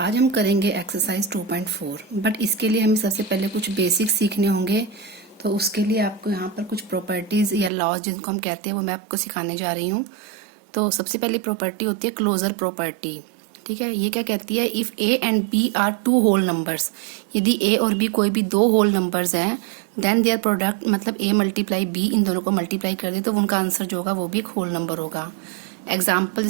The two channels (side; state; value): left; drops out; at 7.7 s